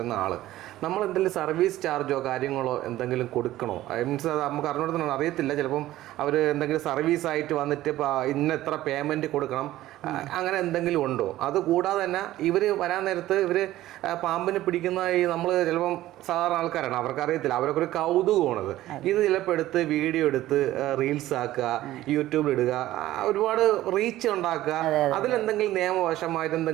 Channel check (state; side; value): quieter; left; 15.1 dB